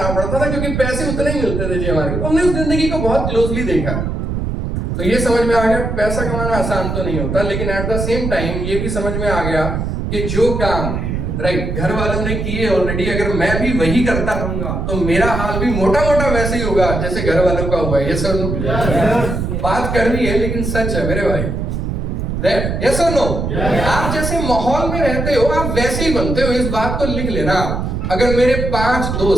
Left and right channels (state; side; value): noise; right; rumble, 2 dB below the sound